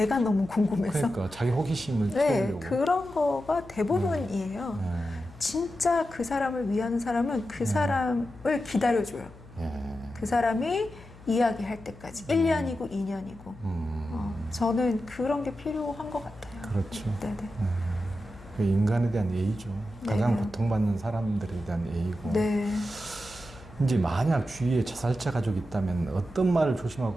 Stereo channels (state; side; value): noise; left; hum, 20 dB below the sound